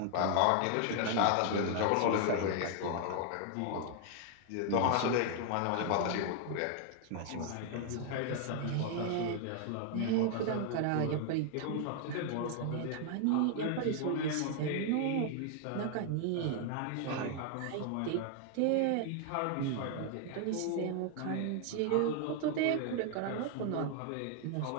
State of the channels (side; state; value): both; different; correlation 0.00